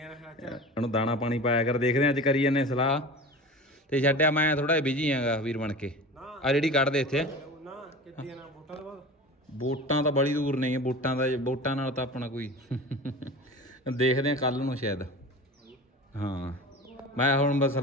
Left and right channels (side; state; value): both; normal; correlation 0.34